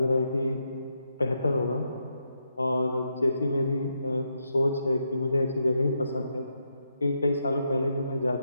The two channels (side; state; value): both; inverted; correlation -0.81